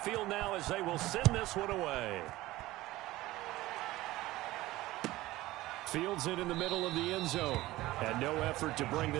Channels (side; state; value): left; quieter; 17.6 dB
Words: now as they will send this one away. Fields it in the middle of the end zone. And no effort to bring